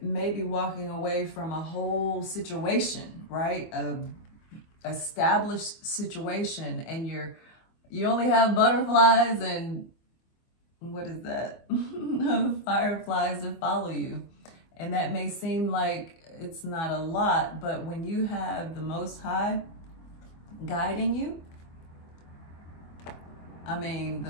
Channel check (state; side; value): late; right; 24 ms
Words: be walking away from a whole situation, right? A established situation, and you only have butterflies and what is that? Fireflies to follow you. And that may seem like it's not a lot, but when you have the Most High guiding you, I mean,